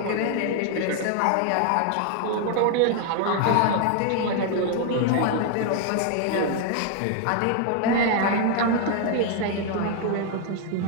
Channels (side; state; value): both; different; correlation 0.00